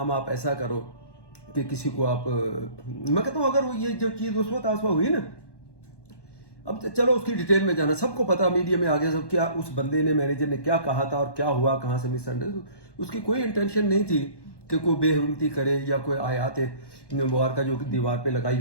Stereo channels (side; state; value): right; late; 1.1 ms